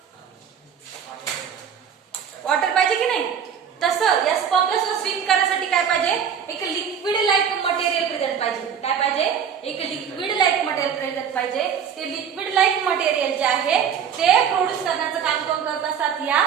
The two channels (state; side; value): quieter; left; 7.7 dB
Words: वॉटर पाहिजे की नाही? तसं या स्पर्मला सुद्धा स्विम करण्यासाठी काय पाहिजे? एक लिक्विड लाईक मटेरियल प्रेझेंट पाहिजे. काय पाहिजे? एक लिक्विड लाईक मटेरियल प्रेझेंट पाहिजे. ते लिक्विड लाईक मटेरियल जे आहे ते प्रोड्यूस करण्याचं काम कोण करत असतात? या